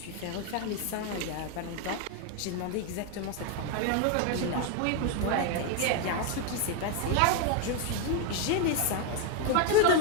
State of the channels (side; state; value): both; different; correlation 0.01